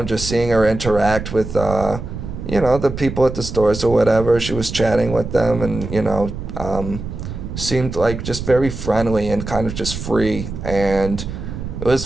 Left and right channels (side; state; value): right; noise; rumble, 7 dB below the sound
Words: just seeing her interact with, you know, the people at the stores or whatever, she was chatting with them and, you know, seemed like just very friendly and kind of just free. And it was